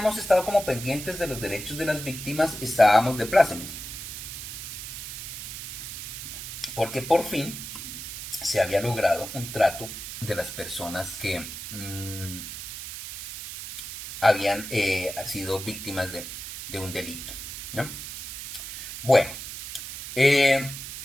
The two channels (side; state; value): right; noise; hiss, 9 dB below the sound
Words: estado como pendientes de los derechos de las víctimas estábamos de plácemes. Porque por fin se había logrado un trato de las personas que habían sido víctimas de un delito, ¿no? Bueno,